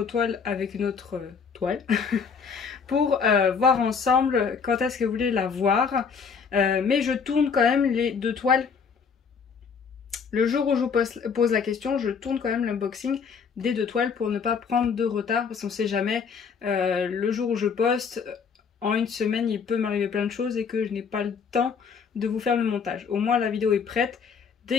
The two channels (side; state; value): right; quieter; 6.0 dB